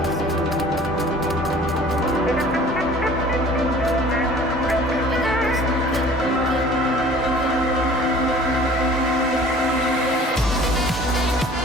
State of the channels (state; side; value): normal; both; correlation 0.48